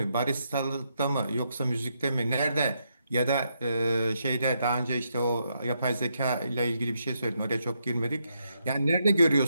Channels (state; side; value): inverted; both; correlation -0.79